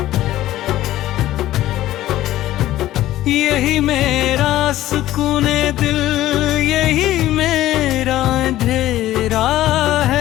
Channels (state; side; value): quieter; right; 14.5 dB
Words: यही मेरा सुकूने दिल, यही मेरा अंधेरा